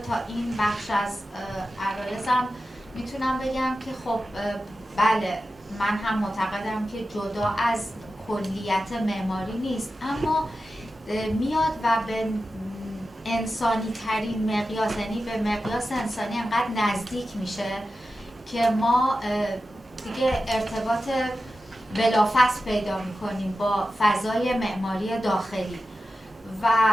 تا این بخش از عرایزم میتونم بگم که خب بله، من هم معتقدم که جدا از کلیت معماری نیست، اما میاد و به انسانی ترین مقیاس، یعنی به مقیاس انسانی انقدر نزدیک میشه که ما دیگه ارتباط بلافاصله پیدا میکنیم با فضای معماری داخلی و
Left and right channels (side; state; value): both; normal; correlation 0.92